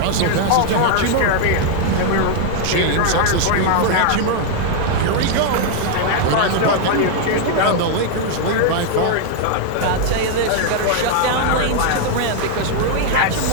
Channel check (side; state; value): both; different; correlation 0.00